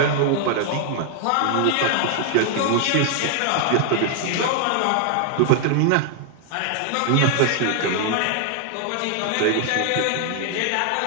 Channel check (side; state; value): both; different; correlation 0.00